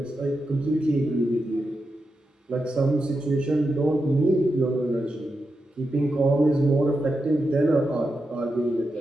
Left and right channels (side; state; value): both; normal; correlation 0.88